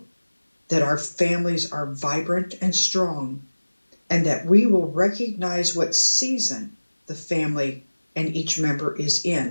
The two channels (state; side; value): inverted; both; correlation -1.00